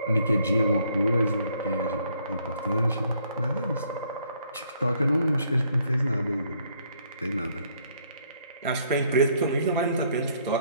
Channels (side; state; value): both; inverted; correlation -0.67